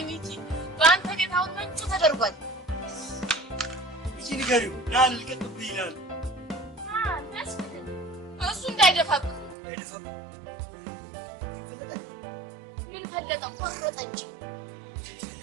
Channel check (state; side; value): drops out; left; at 9.6 s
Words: ሚኪ ባንተ ቤት አሁን ምንጩ ተደርጓል እቺ ንገሪው ዳን ልቀጥብ ይላል እሱ እንዳይደፋብህ እንዳይደፋብህ ምን ፈለጠ ቆረጠ እንጂ